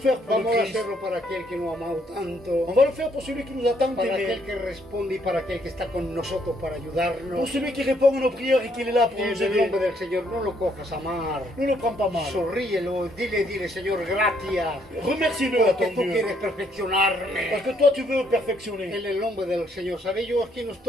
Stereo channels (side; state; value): both; normal; correlation 0.70